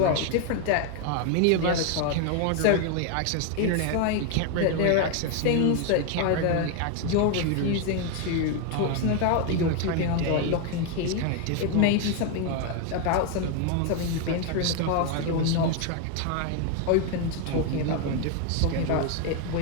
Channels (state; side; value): different; both; correlation 0.01